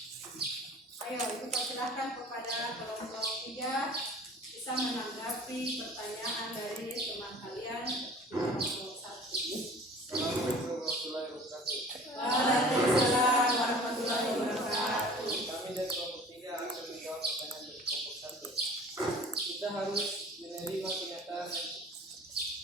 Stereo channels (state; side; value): normal; both; correlation 0.45